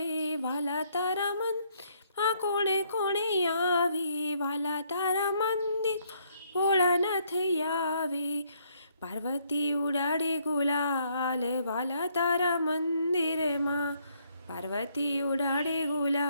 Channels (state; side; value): inverted; both; correlation -0.69